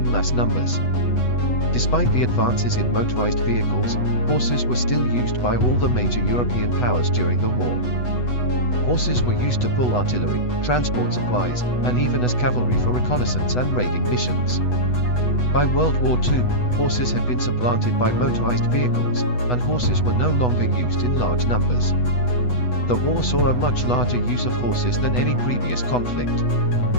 mass numbers. Despite the advances in motorized vehicles, horses were still used by all the major European powers during the war. Horses were used to pull artillery, transport supplies, and even as cavalry for reconnaissance and raiding missions. By World War II, horses had been supplanted by motorized vehicles, and horses were no longer used in large numbers. The war saw a much larger use of horses than any previous conflict.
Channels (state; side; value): late; right; 8.1 ms